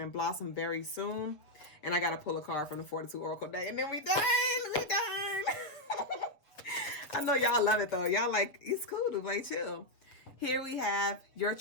blossom very soon. And I got to pull a card from the Fortitude Oracle deck. And then we done. We done. I know y'all love it, though. Y'all like, it's cool to play chill. Here we have, your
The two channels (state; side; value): late; right; 7.0 ms